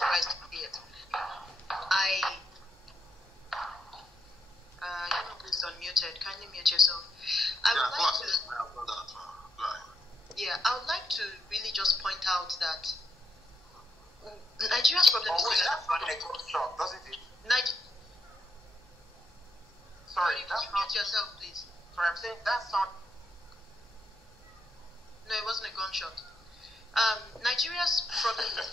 to see it. Please unmuted. Kindly mute yourself. I would like to really just point out that Nigeria's problem is doesn't it? Sorry, can you mute yourself, please? Sorry, I'm saying that's not. No, it wasn't a gunshot. Nigeria's problem is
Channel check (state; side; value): normal; both; correlation 0.78